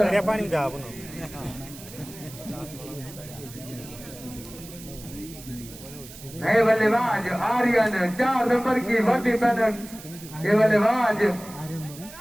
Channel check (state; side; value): noise; right; hiss, 16 dB below the sound